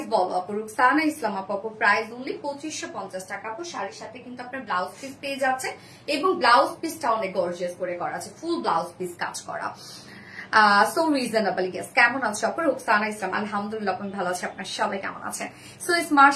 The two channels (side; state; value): both; identical; correlation 1.00